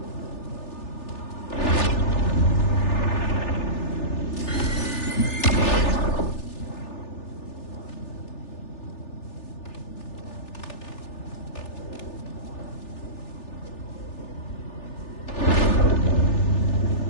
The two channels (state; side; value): late; right; 3.4 ms